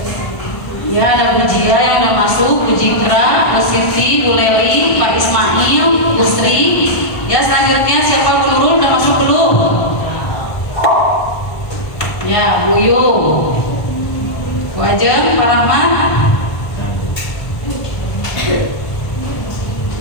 Ya, ada Bu Jia yang udah masuk, Bu Jikra, Bu Siti, Bu Leli, Pak Ismail, Bu Sri. Ya, selanjutnya siapa? Bu Nurul udah masuk belum? Ya, Bu Yu, Bu Ajeng, Pak Rahman.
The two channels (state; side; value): late; right; 1.3 ms